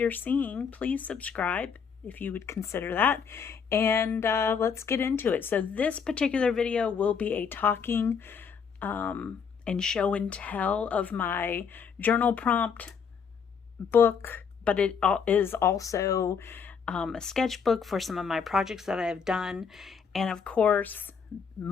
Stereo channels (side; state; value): right; quieter; 6.4 dB